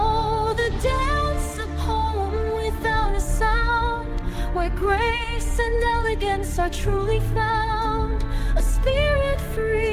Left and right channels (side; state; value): both; identical; correlation 1.00